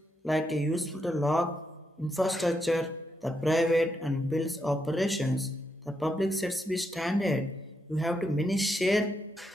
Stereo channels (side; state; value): both; normal; correlation 0.81